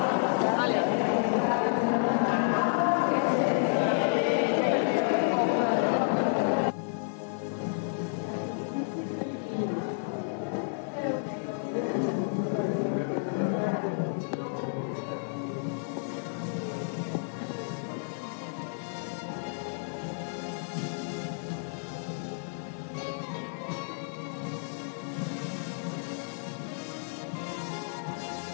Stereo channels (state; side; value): silent; right; digital silence